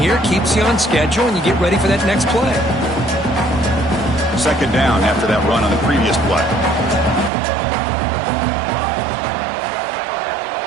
Keeps you on schedule, and you get ready for that next play. Second down after that run on the previous play.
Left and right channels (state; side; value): drops out; left; at 7.3 s